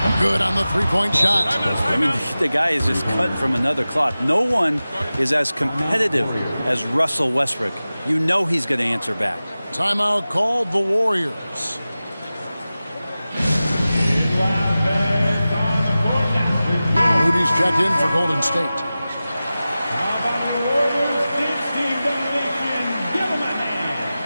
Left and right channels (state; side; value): inverted; both; correlation -0.96